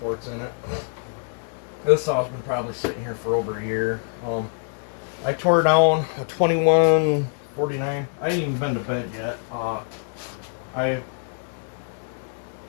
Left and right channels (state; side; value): silent; right; 62 dB below the other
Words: ports in it. This saw's been probably sitting here for over a year. I tore down a 2149. I ain't even been to bed yet. I